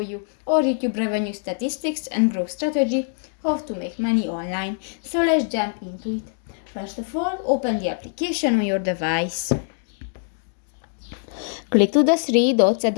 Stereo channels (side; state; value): right; silent; digital silence